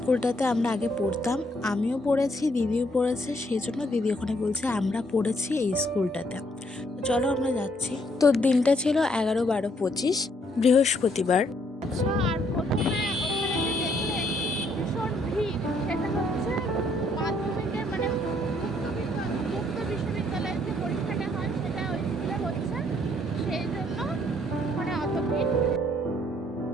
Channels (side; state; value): both; normal; correlation 0.69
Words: আমরা আগে পড়তাম। আমিও পড়েছি, দিদিও পড়েছে, সেই জন্য দিদি ওখানে বলছে আমরা পড়েছি এই স্কুলটাতে। তো চলো আমরা যাচ্ছি। তো দিনটা ছিল 11/12/25 বৃহস্পতিবার। আর প্রথমে ওখানে যে দেখলে ভীষণ ভিড়, সেটা হচ্ছে মাধ্যমিকের মানে মুক্ত বিশ্ববিদ্যালয়ের যে পরীক্ষাটা হয় সেটা ওই স্কুলে হচ্ছে, সেই জন্য মানে অত ভিড়।